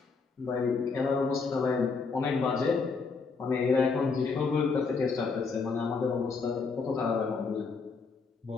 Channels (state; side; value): quieter; right; 4.8 dB